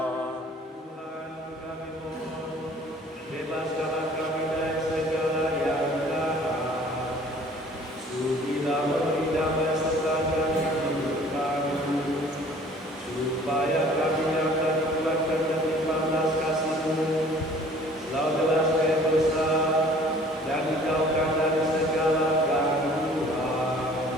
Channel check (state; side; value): normal; both; correlation 0.52